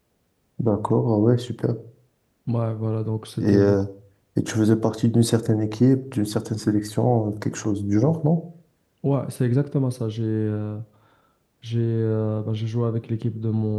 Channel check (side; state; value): both; identical; correlation 1.00